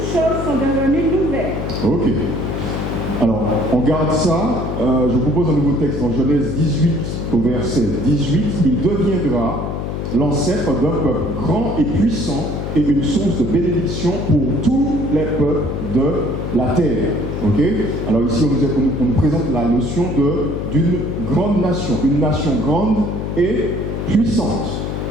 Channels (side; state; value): left; noise; hum, 4 dB below the sound